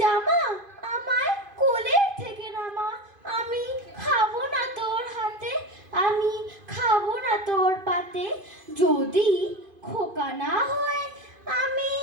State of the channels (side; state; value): left; late; 2.5 ms